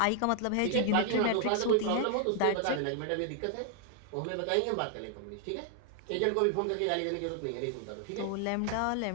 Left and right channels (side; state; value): both; different; correlation 0.00